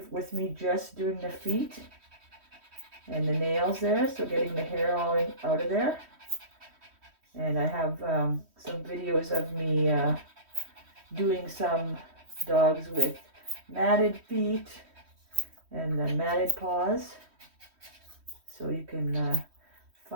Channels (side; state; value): left; late; 3.1 ms